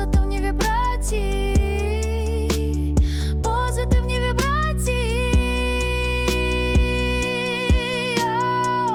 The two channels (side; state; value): both; identical; correlation 1.00